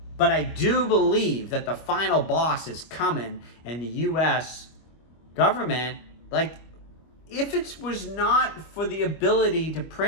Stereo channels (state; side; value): late; right; 25 ms